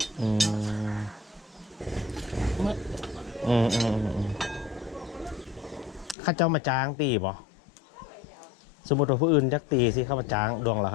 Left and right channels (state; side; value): drops out; right; at 6.2 s